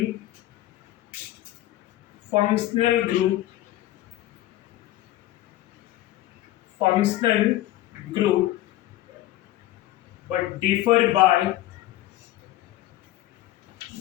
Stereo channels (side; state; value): right; quieter; 15.1 dB